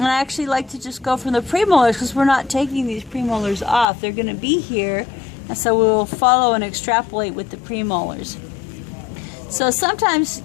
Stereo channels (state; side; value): drops out; right; at 3.9 s